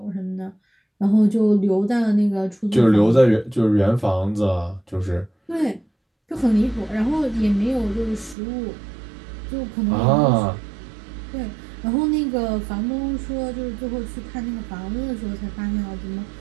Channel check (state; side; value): drops out; left; at 8.3 s